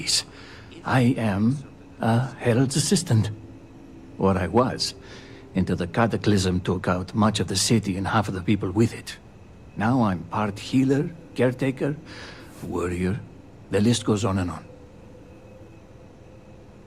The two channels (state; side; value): identical; both; correlation 1.00